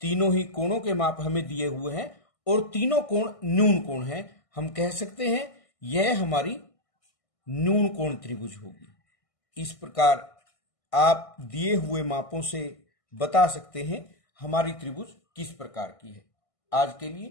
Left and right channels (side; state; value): right; late; 1.6 ms